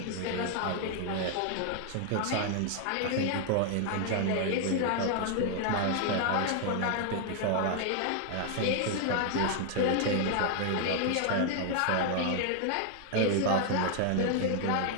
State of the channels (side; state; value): both; different; correlation 0.00